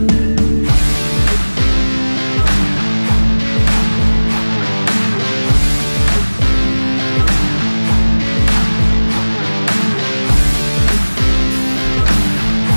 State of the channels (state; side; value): inverted; both; correlation -1.00